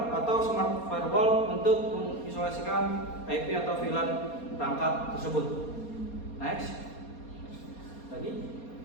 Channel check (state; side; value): late; right; 4.2 ms